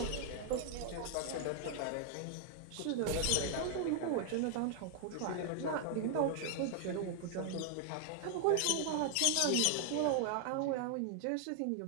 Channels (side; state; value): both; different; correlation 0.00